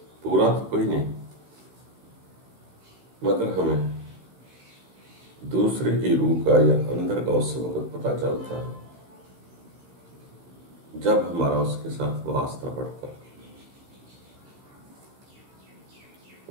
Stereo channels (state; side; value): late; left; 16 ms